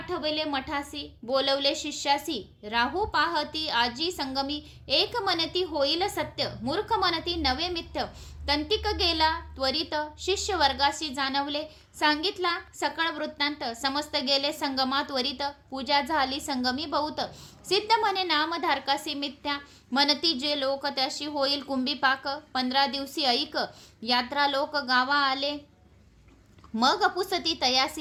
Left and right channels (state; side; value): identical; both; correlation 1.00